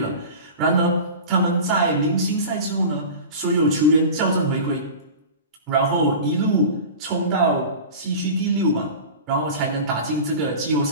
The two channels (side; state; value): both; inverted; correlation -0.34